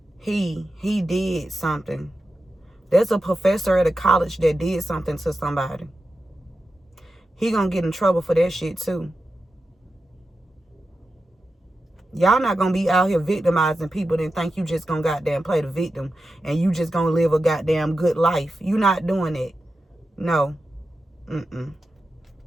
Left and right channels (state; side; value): normal; both; correlation 0.91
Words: He did something. There's a professor at a college that did something to somebody. He gonna get in trouble for that shit too. Y'all not gonna be out here victimizing people and think you just gonna goddamn play the victim and you just gonna live a goddamn good life. You not doing it. No.